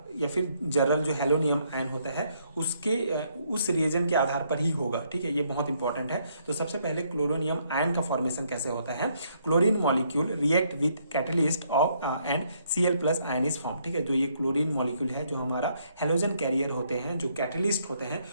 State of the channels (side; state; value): both; inverted; correlation -0.71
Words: जरल जो हेलोनियम आयन होता है उसके उस रिएजन के आधार पर ही होगा। ठीक है, ये बहुत इंपॉर्टेंट है। तो सबसे पहले क्लोरोनियम आयन का फॉर्मेशन कैसे होता है? Chlorine molecule react with catalyst of and Cl plus ion is form. ठीक है, जो ये क्लोरीन मॉलिक्यूल है जो हमारा हेलोजन कैरियर होते हैं, जो कैटलिस्ट होते हैं,